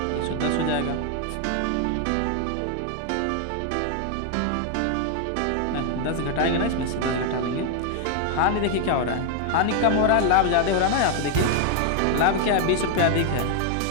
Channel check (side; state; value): both; different; correlation 0.00